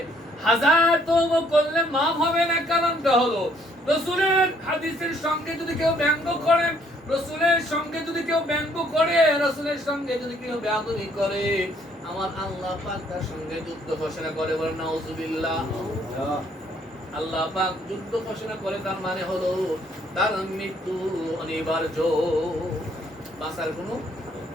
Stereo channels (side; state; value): both; normal; correlation 0.65